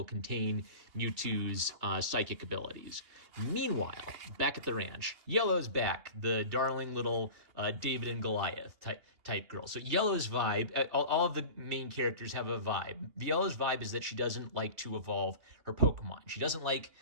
contain Mewtwo's psychic abilities. Meanwhile, back at the ranch, Yellow's back, the darling little David and Goliath type girl. So Yellow's vibe, all of the main characters have a vibe. Yellow's vibe is that she doesn't like to evolve her Pokemon. She doesn't like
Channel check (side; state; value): left; late; 2.8 ms